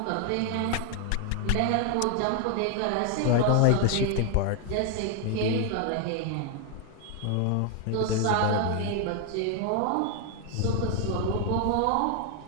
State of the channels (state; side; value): different; both; correlation 0.00